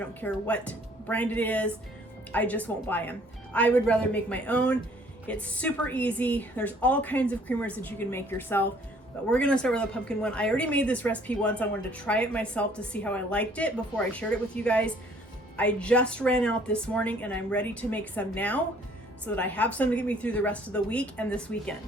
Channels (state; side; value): normal; both; correlation 0.59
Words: care what brand it is. I just won't buy them. I would rather make my own. It's super easy. There's all kinds of creamers that you can make yourself, but we're gonna start with a pumpkin one. I already made this recipe once. I wanted to try it myself to see how I liked it before I shared it with you guys. I just ran out this morning and I'm ready to make some now so that I have some to get me through the rest of the week and this